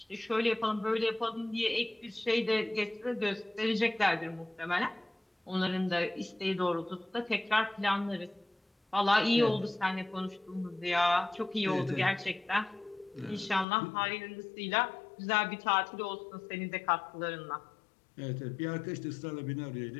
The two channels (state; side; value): drops out; right; at 13.7 s